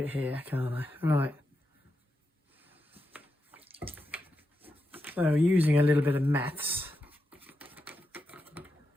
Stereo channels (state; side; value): normal; both; correlation 0.87